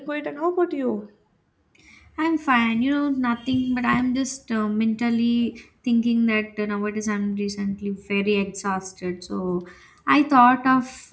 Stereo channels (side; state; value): both; identical; correlation 1.00